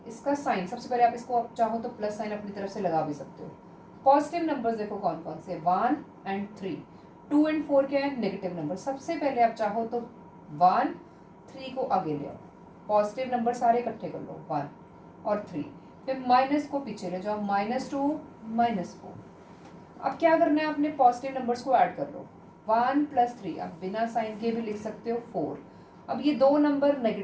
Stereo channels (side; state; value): both; identical; correlation 1.00